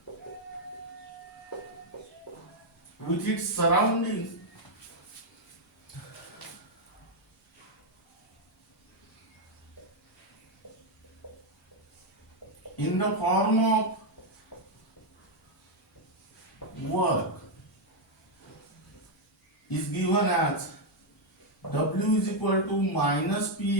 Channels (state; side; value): normal; both; correlation 0.01